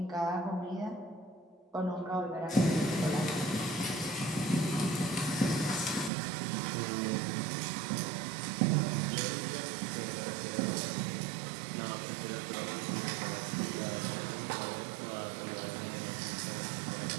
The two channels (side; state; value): left; drops out; at 6.1 s